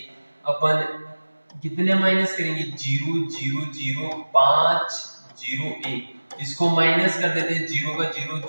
अपन कितने माइनस करेंगे, 0 0 0 5 0 1, इसको माइनस कर देते हैं, 0 का 0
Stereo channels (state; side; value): inverted; both; correlation -1.00